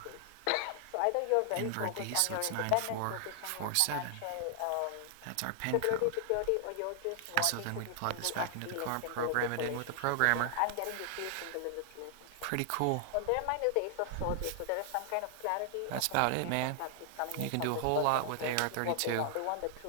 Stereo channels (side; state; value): both; different; correlation 0.00